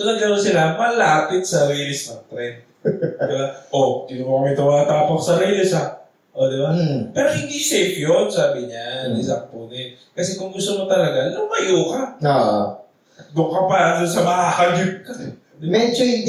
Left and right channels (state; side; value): identical; both; correlation 1.00